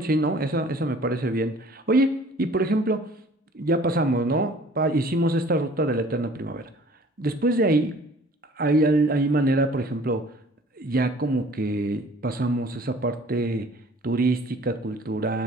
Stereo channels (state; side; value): normal; both; correlation 0.51